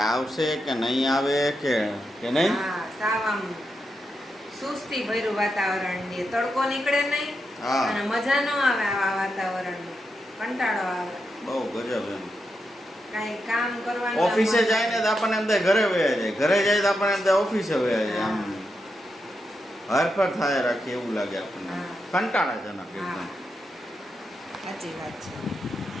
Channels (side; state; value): both; normal; correlation 0.85